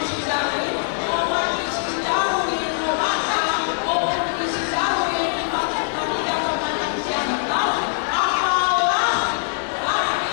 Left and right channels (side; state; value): right; silent; 64 dB below the other